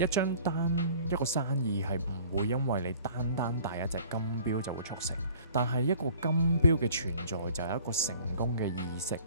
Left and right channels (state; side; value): inverted; both; correlation -0.50